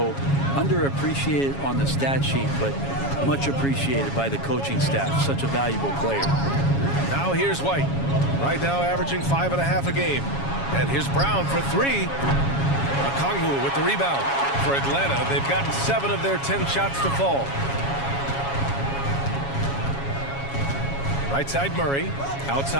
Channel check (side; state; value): right; late; 7.2 ms